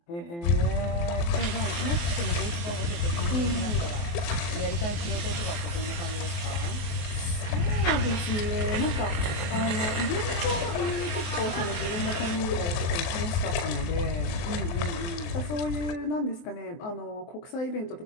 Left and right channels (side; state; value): right; late; 23 ms